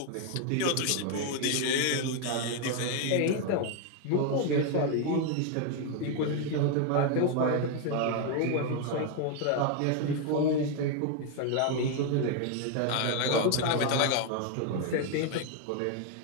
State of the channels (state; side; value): different; both; correlation 0.01